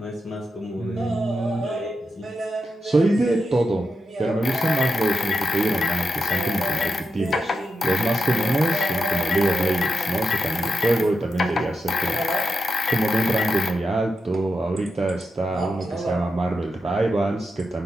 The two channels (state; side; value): normal; both; correlation 0.86